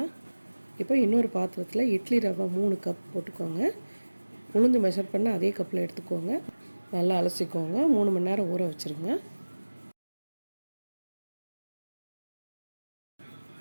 இப்போ இன்னொரு பாத்திரத்தில் இட்லி ரவை 3 கப் போட்டுக்கோங்க. உளுந்து மெஷர் பண்ண அதே கப்பில் எடுத்துக்கோங்க. நல்லா அலசிக்கோங்க. 3 மணி நேரம் ஊற வச்சுருங்க.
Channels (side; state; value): both; inverted; correlation -1.00